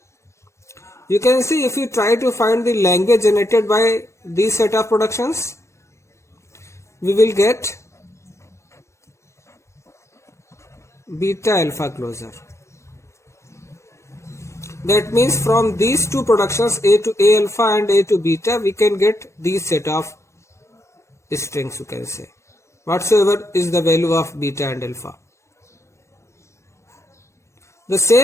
You can see if you try to find the language generated by these set of productions, we will get beta alpha closure. That means from these two productions, A to A alpha and A to beta, we can get these set of strings, you can say, whatsoever is the value of beta and alpha. The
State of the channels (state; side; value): late; right; 0.14 ms